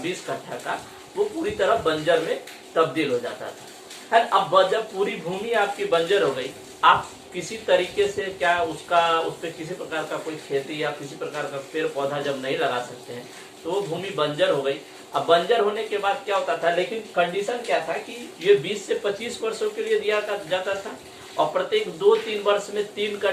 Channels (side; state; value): both; identical; correlation 1.00